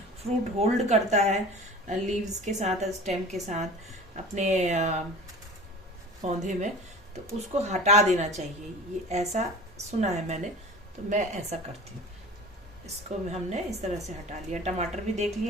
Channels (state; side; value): normal; both; correlation 0.39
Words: फ्रूट होल्ड करता है लीव्स के साथ, स्टेम के साथ अपने पौधे में, तो उसको हटा देना चाहिए, ये ऐसा सुना है मैंने, तो मैं ऐसा करती हूँ। इसको हमने इस तरह से हटा लिया। टमाटर भी देख